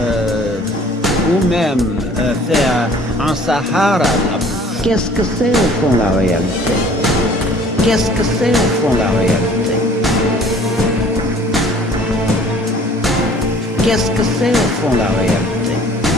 ou même faire un Sahara la bouche. Qu'est-ce que c'est au fond la réalité? Qu'est-ce que c'est au fond la réalité? Qu'est-ce que c'est au fond la réalité?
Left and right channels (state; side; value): normal; both; correlation 0.52